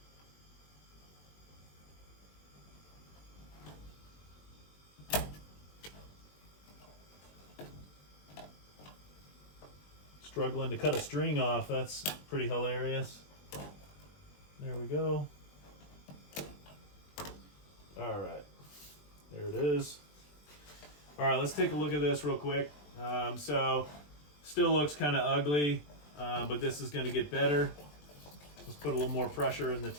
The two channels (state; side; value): late; right; 21 ms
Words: Struggling to cut a string off, that's pretty hilarious. There we go. All right, there it is. All right, let's take a look at this real quick. So still looks kind of ugly, but this is going to get better. Let's put a little more pressure in the